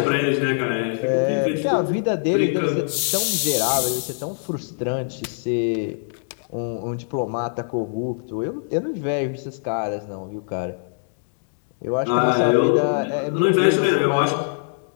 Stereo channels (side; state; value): right; silent; digital silence